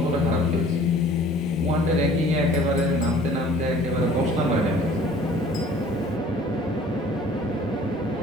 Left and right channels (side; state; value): both; normal; correlation 0.51